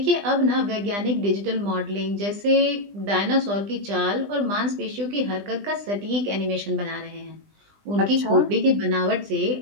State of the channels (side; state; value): left; late; 20 ms